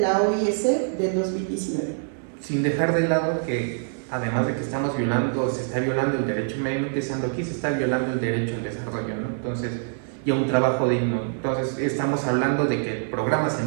OIS del 2019. Sin dejar de lado que además de que se está violando el derecho medio ambiente, aquí se está violando el derecho al desarrollo, ¿no? Entonces, y a un trabajo digno. Entonces estamos hablando de que el programa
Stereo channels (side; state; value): left; silent; 62 dB below the other